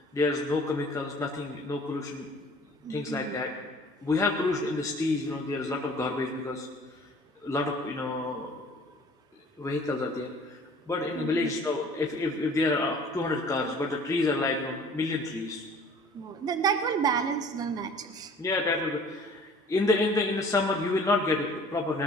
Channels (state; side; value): normal; both; correlation 0.50